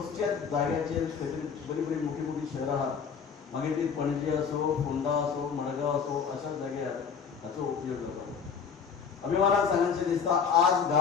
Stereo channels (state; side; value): quieter; right; 6.5 dB